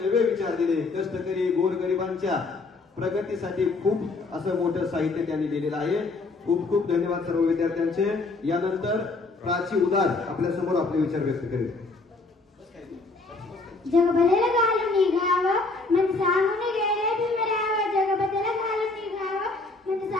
नवे विचार दिले। कष्टकरी गोरगरिबांच्या प्रगतीसाठी खूप असं मोठं साहित्य त्यांनी लिहिलेलं आहे। खूप खूप धन्यवाद सर्व विद्यार्थ्यांचे। यानंतर प्राची उदार आपल्या समोर आपले विचार व्यक्त करेल। जग भलेला घालून निघावं मन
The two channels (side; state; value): right; quieter; 3.5 dB